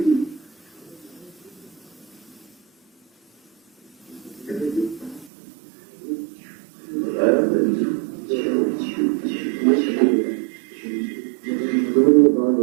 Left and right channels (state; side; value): drops out; left; at 5.3 s